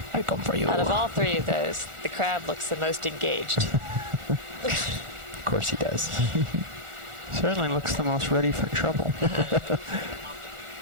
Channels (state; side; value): late; left; 1.4 ms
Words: I come for you. out of all three of those, the crab looks the most engaged. Of course he does. Certainly looks the most ready for trouble.